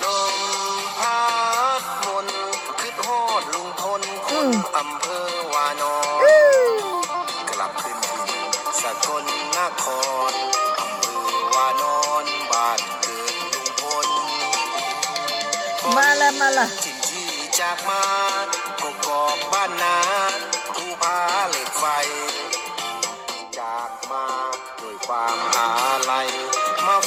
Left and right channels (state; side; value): identical; both; correlation 1.00